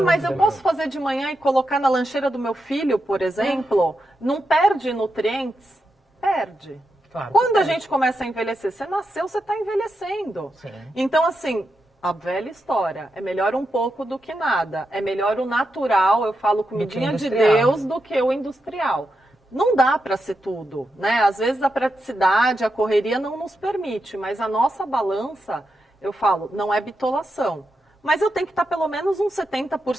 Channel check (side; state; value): both; normal; correlation 0.86